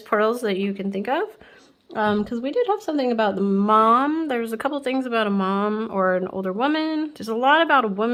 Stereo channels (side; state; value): both; identical; correlation 1.00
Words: pearls that you can think of. Because we did have something about the mom. There's a couple things about a mom or an older woman. There's a lot about a